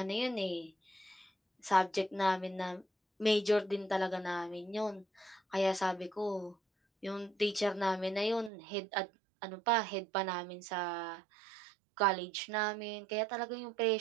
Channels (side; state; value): left; drops out; at 8.5 s